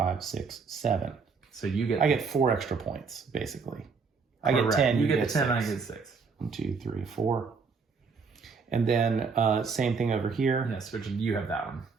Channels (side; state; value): left; quieter; 5.1 dB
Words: 6, 7. So I get 4 extra points basically. I get 10. You get 10. 6. I get 6. 1, 2, 3, 4. And then same thing over here. Yes, which you have that one.